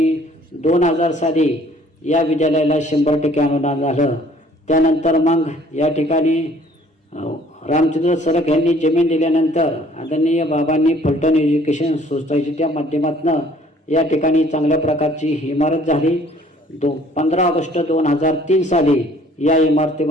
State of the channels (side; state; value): both; normal; correlation 0.57